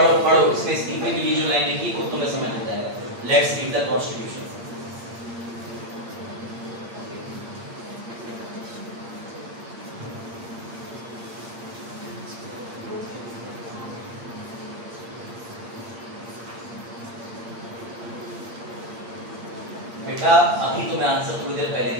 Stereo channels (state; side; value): late; left; 8.6 ms